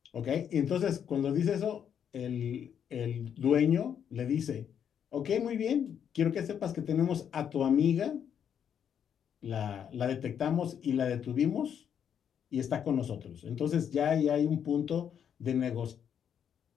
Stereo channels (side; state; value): right; quieter; 8.4 dB